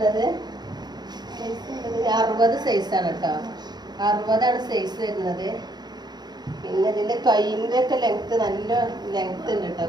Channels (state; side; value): late; left; 0.20 ms